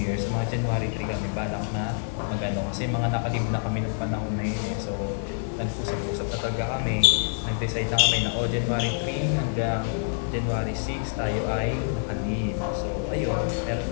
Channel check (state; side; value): silent; right; digital silence